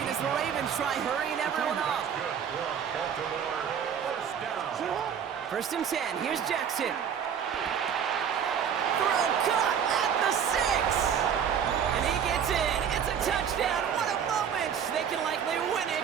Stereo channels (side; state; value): left; quieter; 8.0 dB